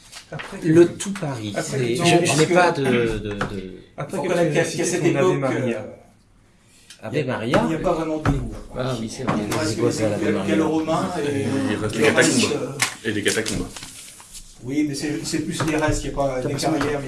Le tout Paris. Après, c'est- non, je parce n'ai que- pas de Après Faut que connaître tu qu'à as cité cette ton Ave époque, Maria. Ave Maria. il n'y a pas vraiment d'égout. Ah oui, c'est vrai. Il reste Égout à la que Maria. le romain et Il reste le les catacombes. reste, Et des catacombes. oui, mais c'est plus les restes, il n'y a pas des carrières, mais il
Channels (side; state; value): both; identical; correlation 1.00